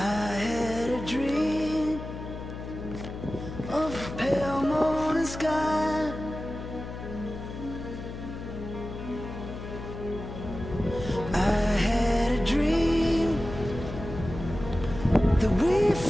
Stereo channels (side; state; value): left; noise; hum, 9 dB below the sound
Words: a dream of a pale morning sky. I had a dream that we